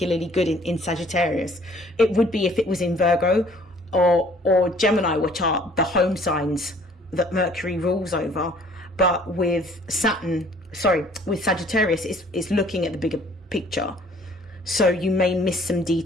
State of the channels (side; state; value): both; normal; correlation 0.57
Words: good in Sagittarius. It would be if it was in Virgo or Gemini, which are the home signs that Mercury rules over. But with Sagittarius, it's looking at the bigger picture. So you may miss some